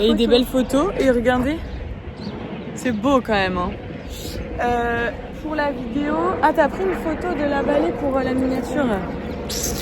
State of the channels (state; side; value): identical; both; correlation 1.00